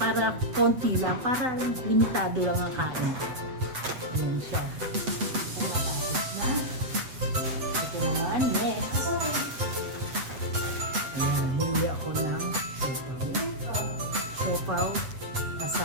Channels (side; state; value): left; late; 7.9 ms